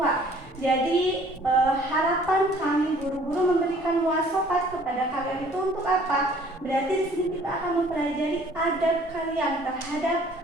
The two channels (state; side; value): normal; both; correlation 0.55